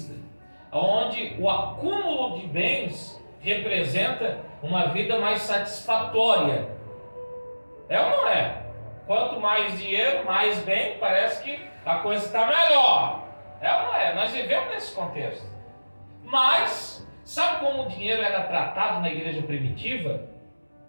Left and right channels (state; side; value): inverted; both; correlation -1.00